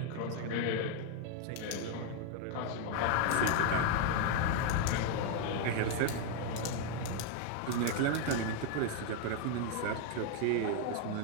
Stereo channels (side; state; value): both; different; correlation 0.01